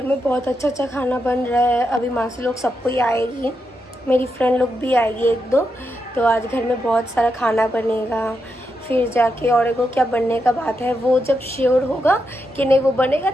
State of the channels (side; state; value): both; normal; correlation 0.84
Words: में बहुत अच्छा खाना बन रहा है। अभी मासी लोग सबको ही आएगी, मेरी फ्रेंड लोग भी आएगी एक दो। तो आज घर में बहुत सारा खाना बनेगा। फिर जाके और एगो क्या बनने का बात है, वो जब श्योर होगा कि नहीं वो बनेगा